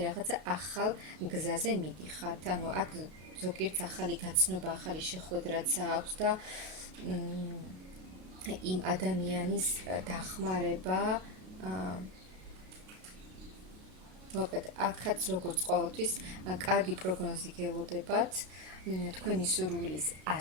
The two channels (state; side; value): late; left; 32 ms